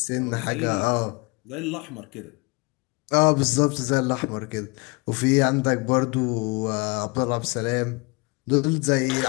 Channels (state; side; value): quieter; right; 27.8 dB